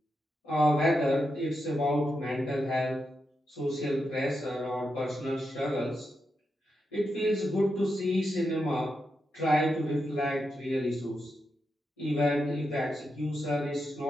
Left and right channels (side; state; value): both; normal; correlation 0.86